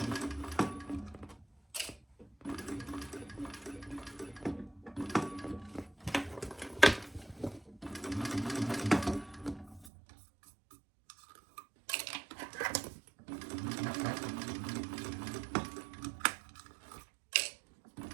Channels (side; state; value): left; drops out; at 9.9 s